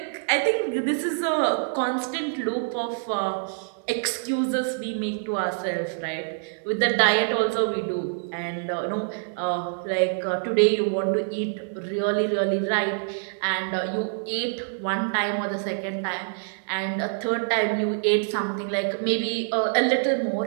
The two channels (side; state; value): left; silent; digital silence